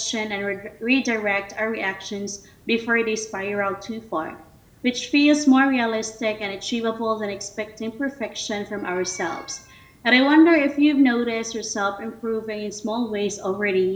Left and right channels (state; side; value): identical; both; correlation 1.00